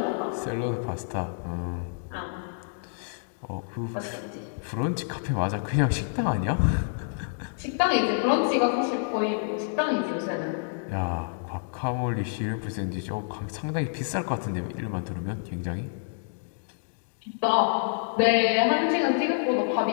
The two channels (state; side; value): silent; right; digital silence